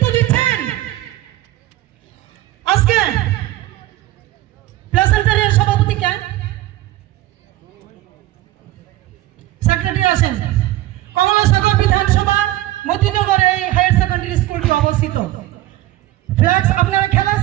দিচ্ছেন। আজকে প্লেসেন্টারের সভাপতি কে? সেক্রেটারি আসেন। কমলাসাগর বিধানসভা মতিনগর এই হায়ার সেকেন্ডারি স্কুলটি অবস্থিত। ফ্ল্যাক্স আপনারা খেলা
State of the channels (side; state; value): left; quieter; 16.0 dB